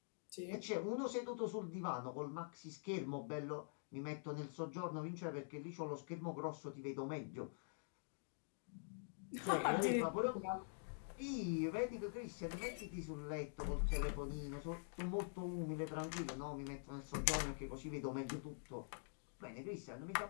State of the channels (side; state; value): right; silent; digital silence